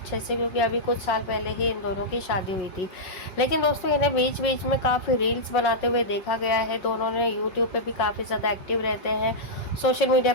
से, क्योंकि अभी कुछ साल पहले ही इन दोनों की शादी हुई थी। लेकिन दोस्तों इन्हें बीच बीच में काफ़ी रील्स बनाते हुए देखा गया है। दोनों ने यूट्यूब पे भी काफ़ी ज़्यादा एक्टिव रहते हैं, सोशल मीडिया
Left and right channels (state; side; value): late; right; 5.3 ms